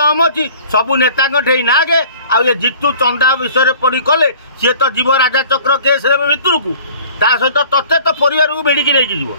अच्छी सबू नेता नागे आ ये जितू चंदा विषय पड़ी कले सी तो जीव राजा चक्र केस भितर को ता सहित तत्ते तो परिवार को बेड़ी नहीं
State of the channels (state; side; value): inverted; both; correlation -0.48